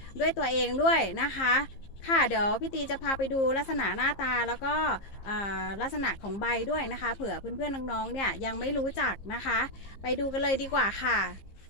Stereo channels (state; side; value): late; right; 15 ms